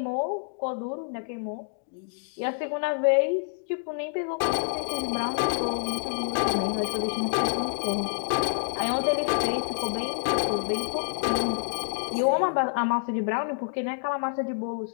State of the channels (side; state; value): right; silent; digital silence